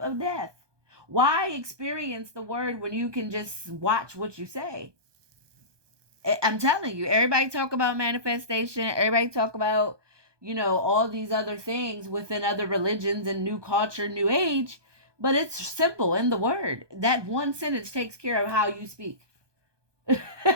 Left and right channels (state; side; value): late; left; 1.2 ms